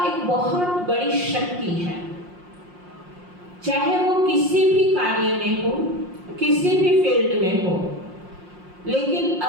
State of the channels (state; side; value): late; left; 5.6 ms